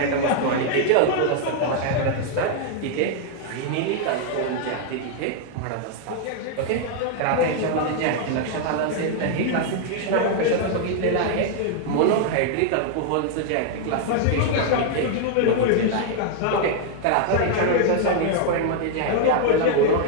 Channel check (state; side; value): different; both; correlation 0.00